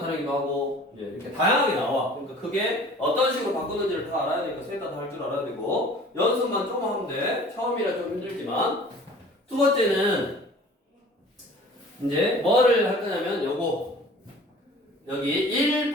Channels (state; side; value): normal; both; correlation 0.47